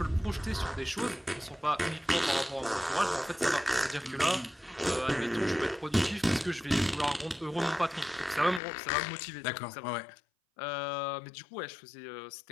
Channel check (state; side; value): drops out; right; at 8.6 s